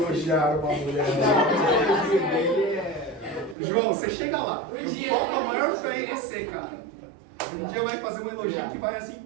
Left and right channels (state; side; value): drops out; left; at 3.6 s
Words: uma mulher. João, você chega lá. Eu coloco a maior fé em você, cara. Um dia vai fazer um elogio que vai assim.